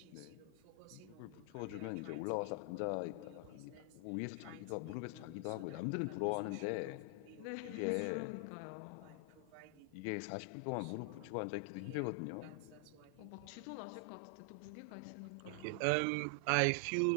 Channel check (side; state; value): both; different; correlation 0.00